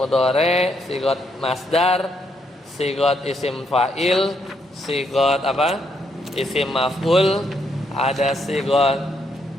sigot masdar, sigot isim fa'il, sigot isim maf'ul, ada sigot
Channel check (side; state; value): both; normal; correlation 0.75